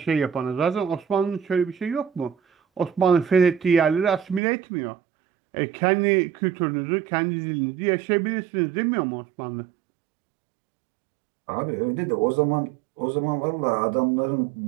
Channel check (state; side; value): drops out; left; at 4.4 s